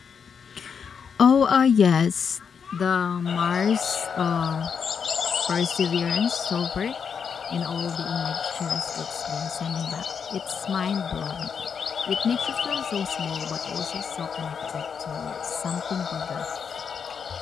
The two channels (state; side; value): quieter; right; 6.6 dB